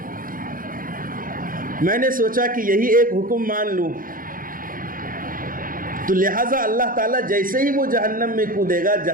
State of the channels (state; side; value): late; left; 0.40 ms